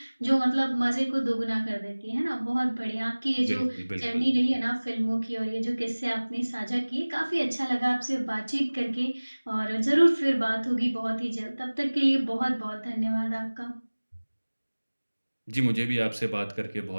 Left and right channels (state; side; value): inverted; both; correlation -1.00